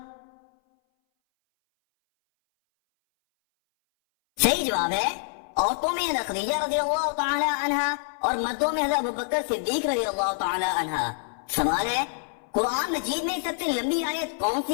صحیح جواب ہے عورتوں میں حضرت خدیجہ رضی اللہ تعالی عنہ اور مردوں میں حضرت ابوبکر صدیق رضی اللہ تعالی عنہ۔ سوال ہے قرآن مجید میں سب سے لمبی آیت کون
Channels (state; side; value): silent; right; 59 dB below the other